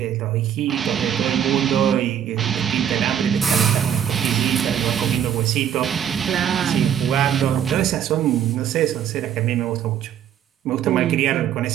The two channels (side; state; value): left; quieter; 9.5 dB